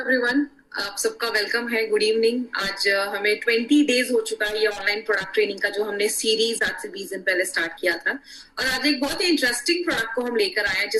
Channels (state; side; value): identical; both; correlation 1.00